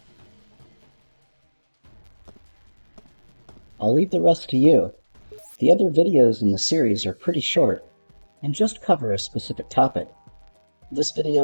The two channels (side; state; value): both; inverted; correlation -1.00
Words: I'll leave the rest to you. The other videos in the series are pretty short, and just cover a specific topic. This